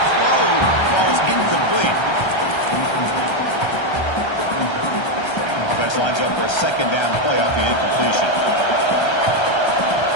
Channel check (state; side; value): late; right; 1.3 ms